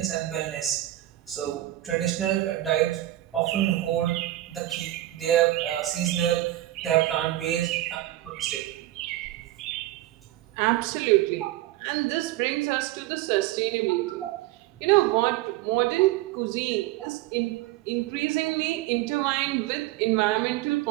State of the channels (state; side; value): quieter; left; 15.5 dB